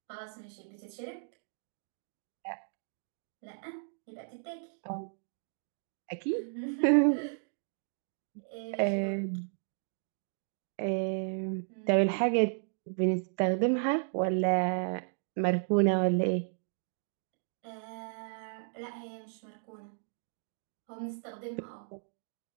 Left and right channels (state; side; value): silent; left; digital silence